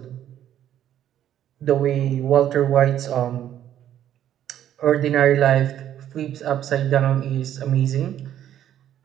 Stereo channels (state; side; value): quieter; left; 11.0 dB